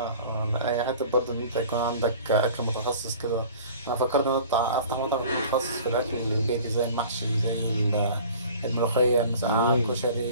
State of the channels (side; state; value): both; inverted; correlation -0.45